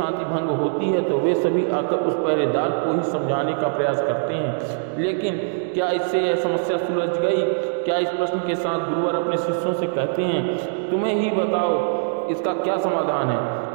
भंग होती है, तो वे सभी आकर उस पहरेदार को ही समझाने का प्रयास करते हैं। लेकिन क्या इससे यह समस्या सुलझ गई? क्या इस प्रश्न के साथ गुरुवर अपने शिष्यों से कहते हैं, तुम्हें ही बताओ इसका क्या समाधान है?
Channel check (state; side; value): silent; left; digital silence